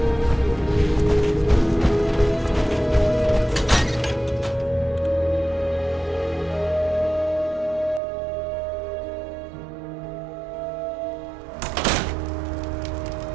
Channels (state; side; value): drops out; left; at 8.0 s